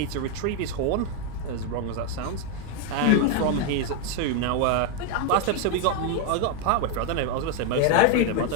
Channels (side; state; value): both; different; correlation 0.01